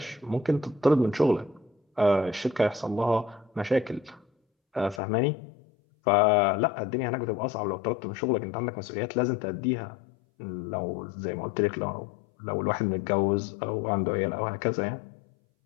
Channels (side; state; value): right; drops out; at 5.0 s